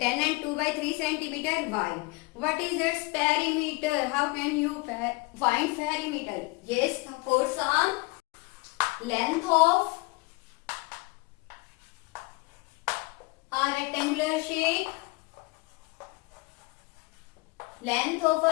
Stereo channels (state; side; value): quieter; right; 25.6 dB